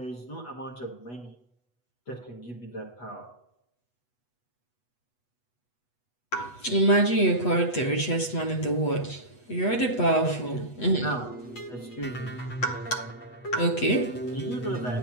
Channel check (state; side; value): late; right; 8.2 ms